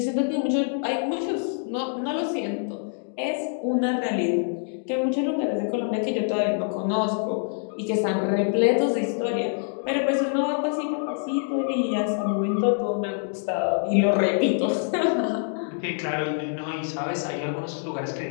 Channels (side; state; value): right; silent; 58 dB below the other